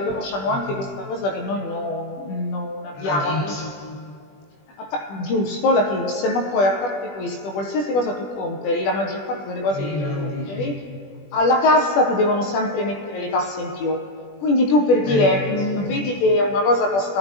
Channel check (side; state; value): right; late; 20 ms